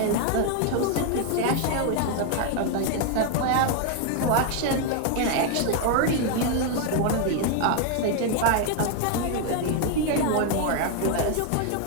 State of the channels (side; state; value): both; different; correlation 0.01